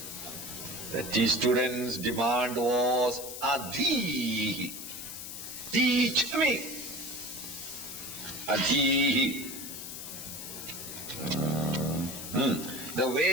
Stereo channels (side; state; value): left; noise; hiss, 9 dB below the sound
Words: The student's demand was Adhihi. Teach me. Adhihi. The